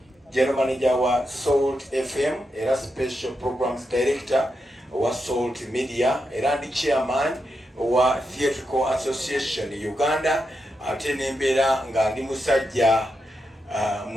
General Manager wa Salt FM, era Special Programs Director wa Salt Media, era ndi Chairman wa Theatrical Association Uganda, ate nembera nga ndi musajja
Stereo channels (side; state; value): both; normal; correlation 0.85